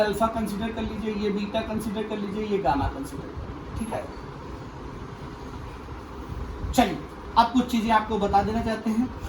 कंसीडर कर लीजिए, ये बीटा कंसीडर कर लीजिए, ये गामा कंसीडर कर लीजिए, ठीक है। चलिए अब कुछ चीजें आपको बता देना चाहते हैं,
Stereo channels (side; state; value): both; identical; correlation 1.00